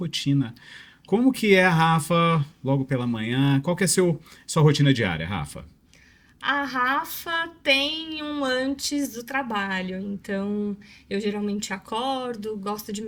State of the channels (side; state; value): both; identical; correlation 1.00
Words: Como que é a Rafa logo pela manhã? Qual que é sua rotina diária, Rafa? A Rafa tem um antes do trabalho, então eu geralmente acordo, gosto de